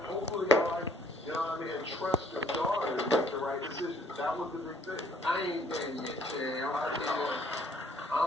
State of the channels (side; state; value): both; normal; correlation 0.61